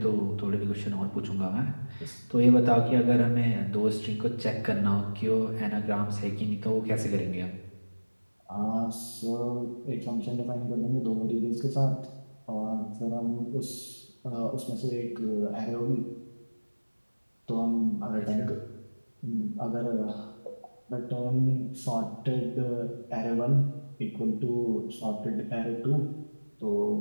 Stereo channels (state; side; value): inverted; both; correlation -1.00